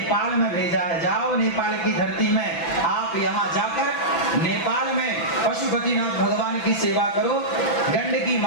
में भेजा है। जाओ नेपाल की धरती में, आप यहाँ जाकर नेपाल में पशुपतिनाथ भगवान की सेवा करो, गंडकी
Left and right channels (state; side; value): late; right; 6.0 ms